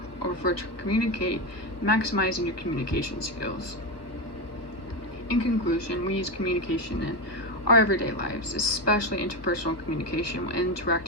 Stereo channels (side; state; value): right; late; 1.2 ms